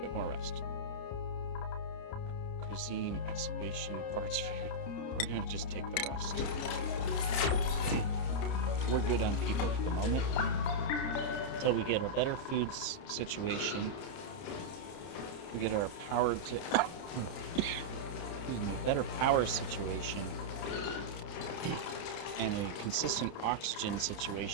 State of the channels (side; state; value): right; late; 30 ms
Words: more rest. Cuisine, excavation, parts food. We're gonna just take the rest. We're good on people at the moment. Until we get a better food situation. We get our power to... better power situation. And a consistent oxygen